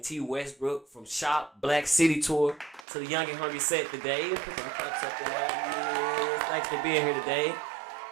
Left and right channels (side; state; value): left; drops out; at 2.9 s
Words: Tee Westbrook from Shop Black City Tour to the Young and Hungry set today. Put them cups up there. Thanks for being here today.